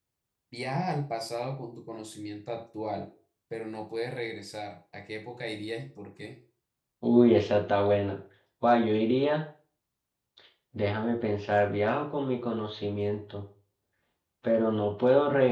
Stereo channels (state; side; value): identical; both; correlation 1.00